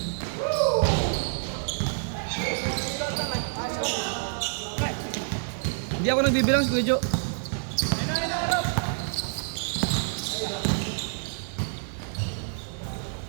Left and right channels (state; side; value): silent; left; 60 dB below the other